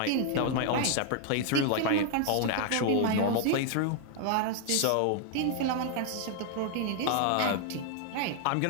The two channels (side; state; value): both; different; correlation 0.00